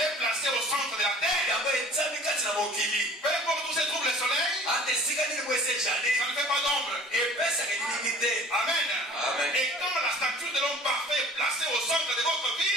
est placée au centre de la terre. yango etiami kati na mokili. Peu importe où se trouve le soleil, ata esika nini bo esejali ça ne fait pas d'ombre. epesaka elingi te. Amen. Amen. Et quand la statue de l'homme parfait est placée au centre de votre vie,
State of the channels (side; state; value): both; normal; correlation 0.47